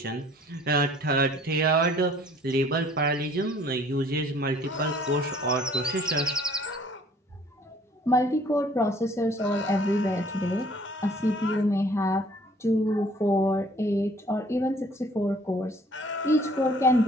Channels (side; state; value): both; normal; correlation 0.56